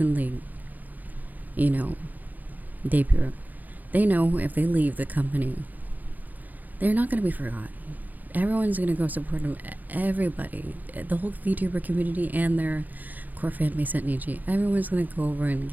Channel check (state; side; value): late; left; 0.083 ms